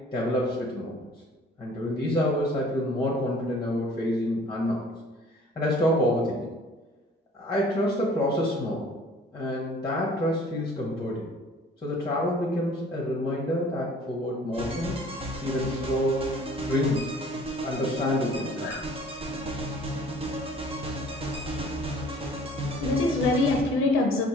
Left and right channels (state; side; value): normal; both; correlation 0.52